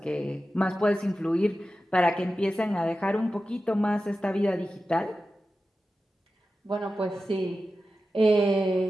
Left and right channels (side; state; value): both; normal; correlation 0.93